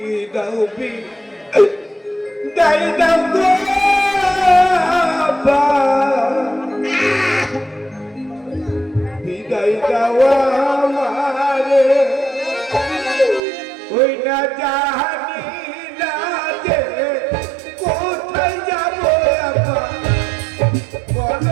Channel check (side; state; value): left; drops out; at 13.4 s